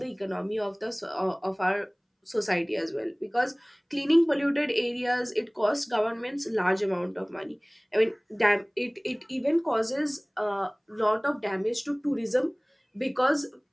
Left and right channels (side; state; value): both; identical; correlation 1.00